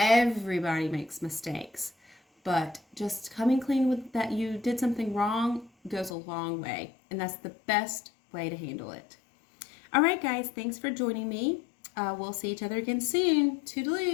makes mistakes, but just coming clean with that you did something wrong goes a long way, and that's the best way to handle it. All right, guys, thanks for joining me. We'll see each other again soon.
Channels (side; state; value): right; drops out; at 6.1 s